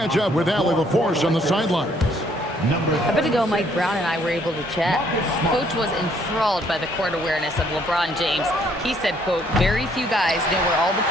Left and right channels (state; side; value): normal; both; correlation 0.66